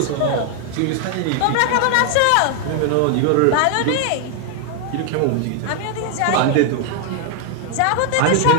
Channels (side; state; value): both; different; correlation 0.00